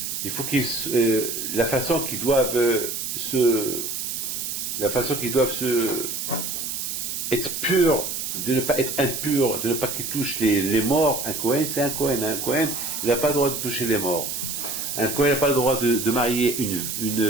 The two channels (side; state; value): right; noise; hiss, 4 dB below the sound